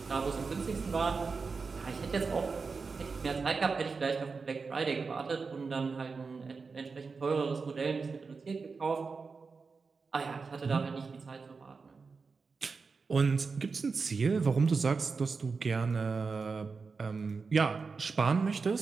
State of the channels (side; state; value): left; quieter; 4.7 dB